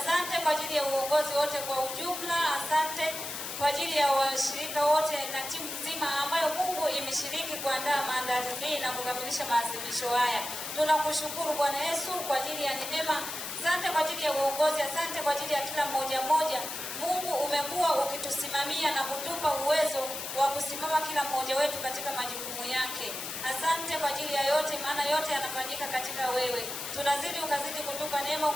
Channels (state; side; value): noise; left; hiss, 6 dB below the sound